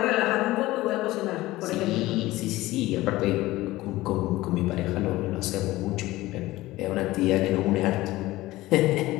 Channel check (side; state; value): right; quieter; 17.9 dB